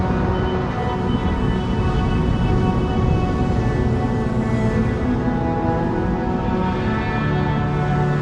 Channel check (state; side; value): identical; both; correlation 1.00